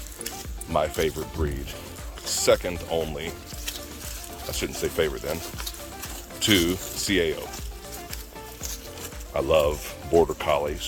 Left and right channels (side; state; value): both; identical; correlation 1.00